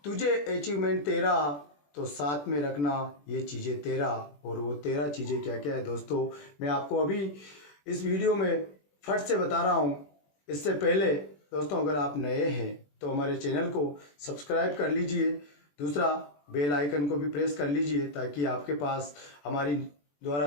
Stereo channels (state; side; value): late; right; 21 ms